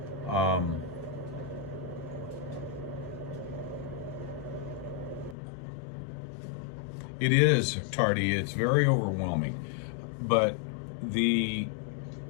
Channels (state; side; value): drops out; right; at 5.4 s